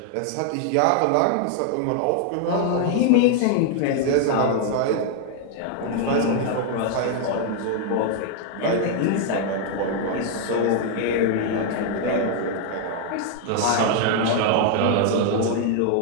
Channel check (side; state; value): both; different; correlation 0.00